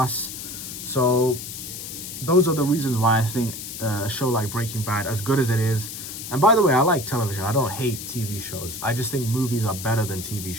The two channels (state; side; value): noise; left; hiss, 9 dB below the sound